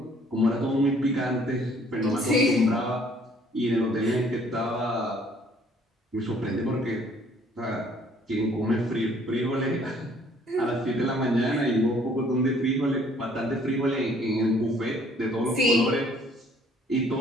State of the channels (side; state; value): both; normal; correlation 0.60